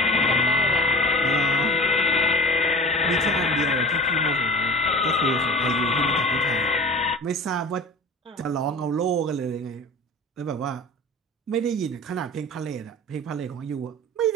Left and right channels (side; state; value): both; normal; correlation 0.37